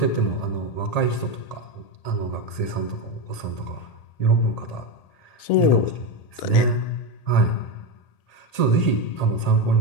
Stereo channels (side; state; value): right; late; 1.8 ms